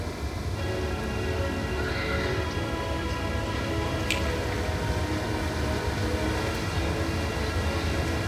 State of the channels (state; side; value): identical; both; correlation 1.00